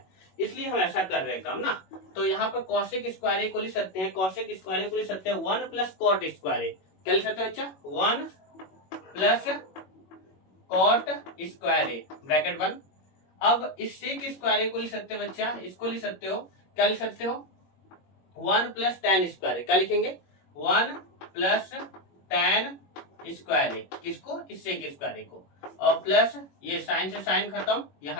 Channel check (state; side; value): late; right; 21 ms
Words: इसलिए हम ऐसा कर रहे हैं काम ना। तो यहाँ पर कॉसेक स्क्वायर ए को लिख सकते हैं, कॉसेक स्क्वायर ए को लिख सकते हैं 1 प्लस कॉट स्क्वायर ए, क्या लिख सकते हैं बच्चा 1 plus cot square A bracket 1। अब इस सेक स्क्वायर ए को लिख सकते हैं बच्चा, इसको लिख सकते हो, क्या लिख सकते हो 1 प्लस टैन स्क्वायर ए, क्या लिखेंगे 1 प्लस टैन स्क्वायर ए, किसको इस सेक स्क्वायर ए को, और प्लस ये साइन से साइन खत्म,